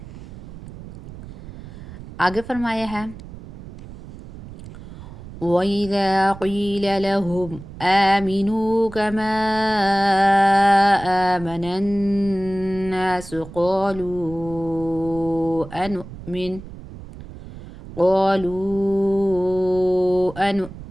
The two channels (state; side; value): noise; right; rumble, 15 dB below the sound